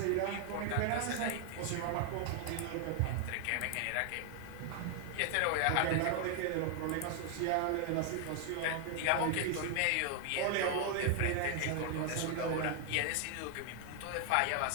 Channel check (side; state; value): both; different; correlation 0.00